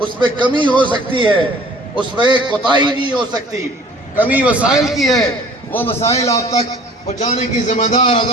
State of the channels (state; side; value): normal; both; correlation 0.50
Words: میں کمی ہو سکتی ہے، اس میں کوتاہی نہیں ہو سکتی، کمی وسائل کی ہے، وہ مسائل آپ تک پہنچانے کی ذمہ دار